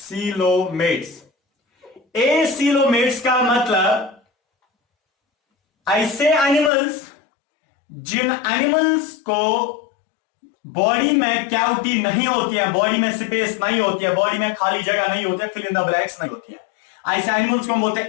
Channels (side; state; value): right; drops out; at 6.7 s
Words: एसीलोमेट्स का मतलब ऐसे एनिमल्स जिन एनिमल्स को बॉडी में कैविटी नहीं होती है, बॉडी में स्पेस नहीं होती है, बॉडी में खाली जगह नहीं होती है, फिल इन द ब्लैंक्स नहीं होती है, ऐसे एनिमल्स को हम बोलते हैं